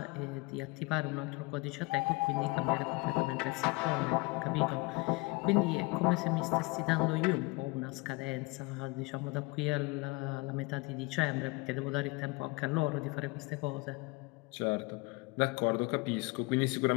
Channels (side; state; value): right; quieter; 25.4 dB